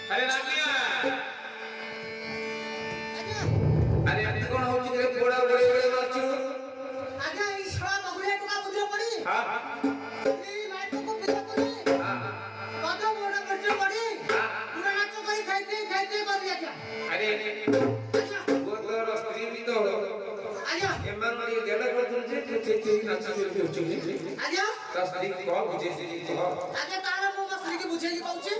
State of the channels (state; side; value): identical; both; correlation 1.00